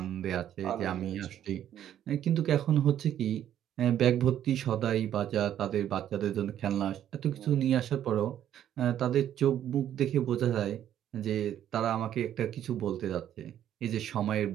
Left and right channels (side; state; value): left; quieter; 10.8 dB